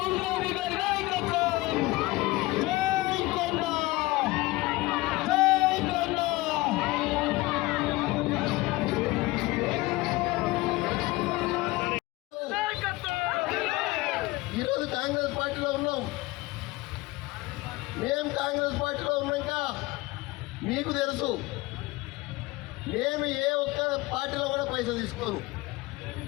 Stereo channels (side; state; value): right; quieter; 20.6 dB